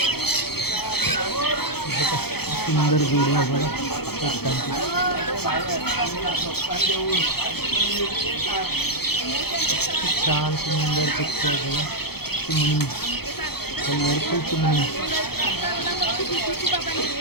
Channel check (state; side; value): late; right; 0.96 ms